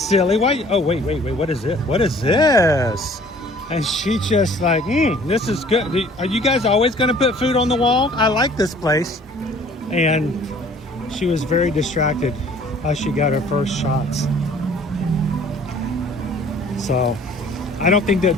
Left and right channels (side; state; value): both; normal; correlation 0.53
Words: Why? Oh, wait. What is it? What is this?" And she just like, "This is good. Are you guys always going to put food on the wall? I like this place." And she was very distracted as she got her first shots. So I don't think